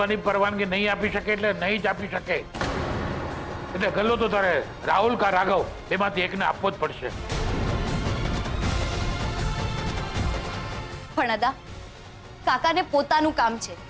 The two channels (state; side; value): identical; both; correlation 1.00